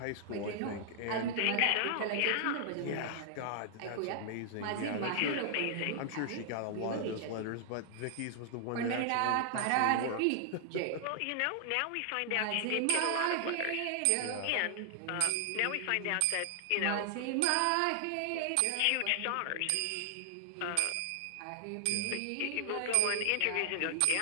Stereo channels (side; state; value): both; different; correlation 0.00